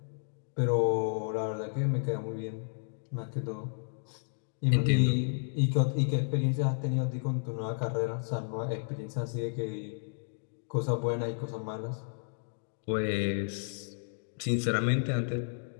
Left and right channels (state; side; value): silent; right; digital silence